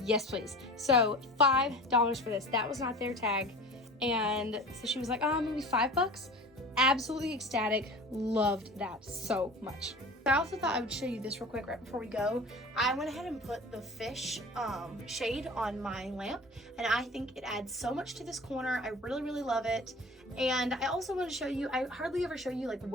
Yes, please. So $5 for this. That was not their tag. And so she was like, oh, maybe $5. Absolutely ecstatic. Loved that so much. I also thought I would show you this real quick right before we go. I went ahead and put the fish shade on my lamp, and I think it adds so much to this corner. I really love it. And I also want to show you, I hardly ever show you like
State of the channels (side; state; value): both; normal; correlation 0.39